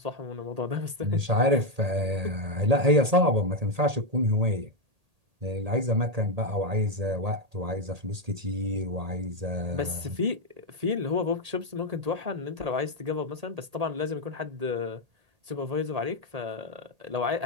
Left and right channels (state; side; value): late; left; 1.8 ms